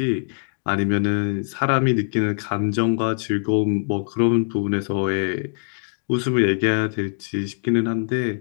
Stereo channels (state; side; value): silent; right; digital silence